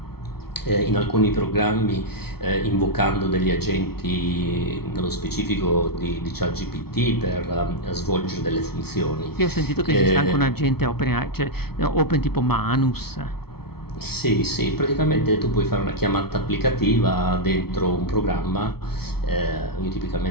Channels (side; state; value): right; late; 0.95 ms